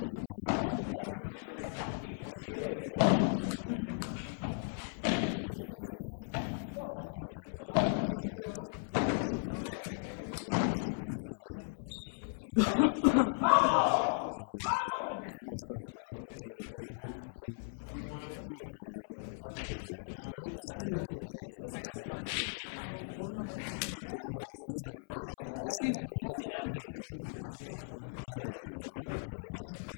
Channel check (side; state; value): right; silent; 53 dB below the other